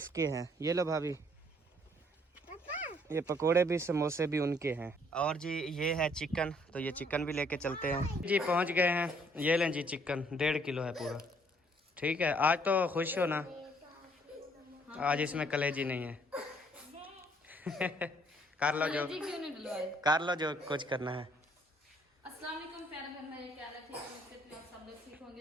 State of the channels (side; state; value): both; normal; correlation 0.64